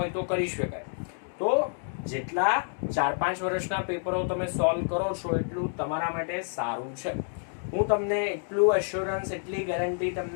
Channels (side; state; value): right; silent; digital silence